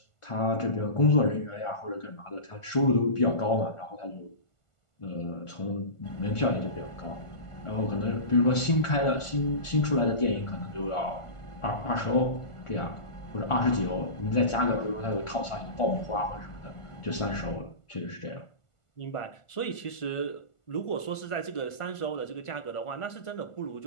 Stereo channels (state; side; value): late; right; 1.5 ms